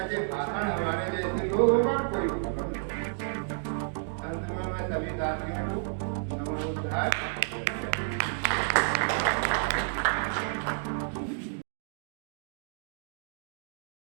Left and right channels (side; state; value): left; silent; digital silence